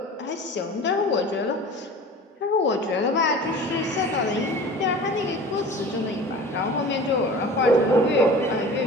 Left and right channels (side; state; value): both; normal; correlation 0.39